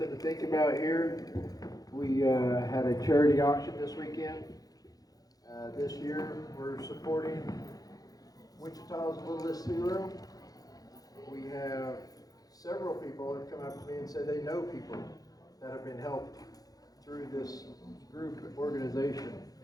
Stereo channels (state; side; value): late; right; 0.18 ms